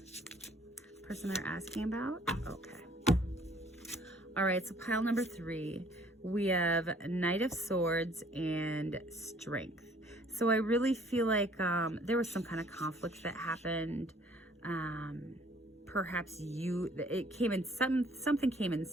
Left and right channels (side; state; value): both; normal; correlation 0.58